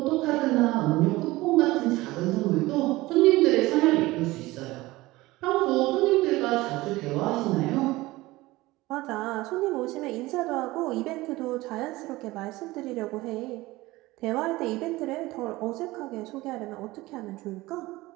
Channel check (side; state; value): left; quieter; 19.4 dB